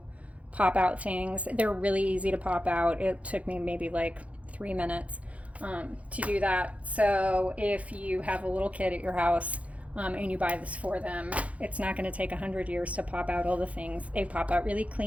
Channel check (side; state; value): left; late; 0.065 ms